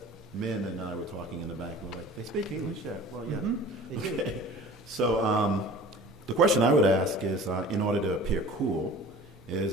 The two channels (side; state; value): both; normal; correlation 0.42